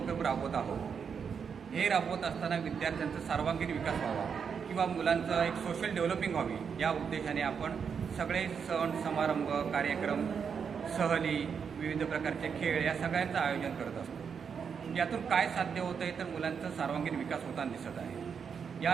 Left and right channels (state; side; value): quieter; left; 6.6 dB